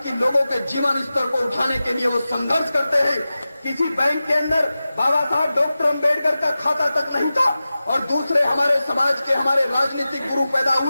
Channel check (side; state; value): both; inverted; correlation -0.95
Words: लोगों के जीवन स्तर को उठाने के लिए वो संघर्ष करते हैं। किसी बैंक के अंदर बाबा साहब डॉक्टर अम्बेडकर का खाता तक नहीं था और दूसरे हमारे समाज के हमारे राजनीतिक गुरु पैदा